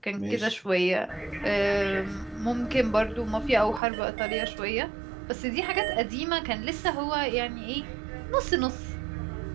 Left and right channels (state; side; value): drops out; left; at 3.8 s